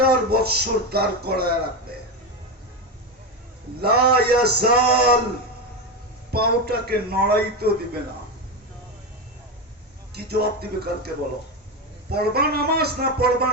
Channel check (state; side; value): normal; both; correlation 0.14